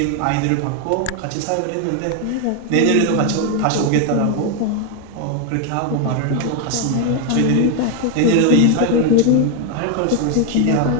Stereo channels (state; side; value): different; both; correlation 0.01